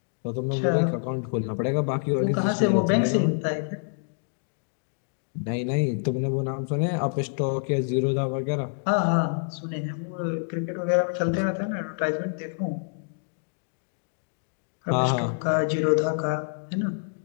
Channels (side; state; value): right; silent; digital silence